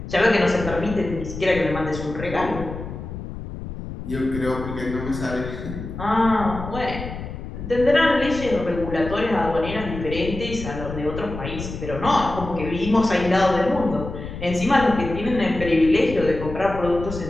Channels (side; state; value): left; noise; rumble, 9 dB below the sound